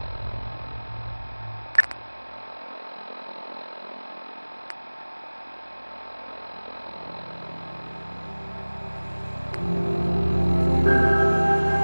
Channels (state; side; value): inverted; both; correlation -1.00